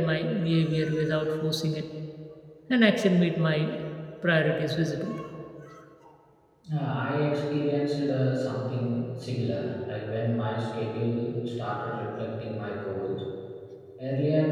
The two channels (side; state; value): both; identical; correlation 1.00